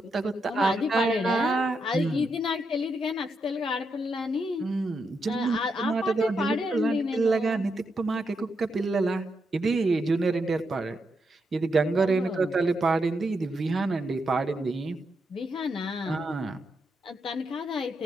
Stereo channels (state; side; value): normal; both; correlation 0.82